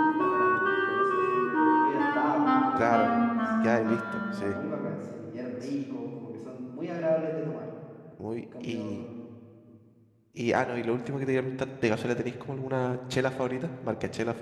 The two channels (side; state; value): both; identical; correlation 1.00